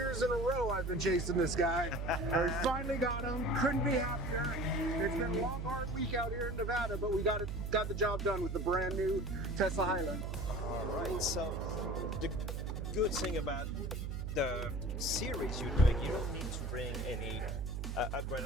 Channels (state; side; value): noise; right; hum, 3 dB below the sound